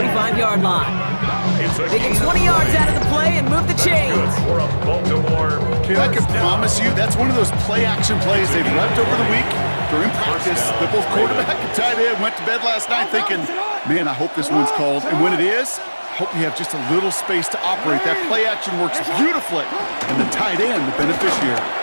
line. They get 20 yards out of the play and move the chains. Kid, I can promise you that's one of those play-action plays they've left over the week during practice. The both quarterback and tight end went to bed last night thinking, man, I hope this one's called. And when it is, I hope you have just a little space to operate. That play-action works beautifully. And the tight end, the beneficiary.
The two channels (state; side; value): inverted; both; correlation -1.00